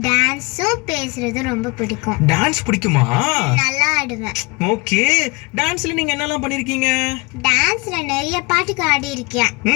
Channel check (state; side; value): quieter; right; 27.4 dB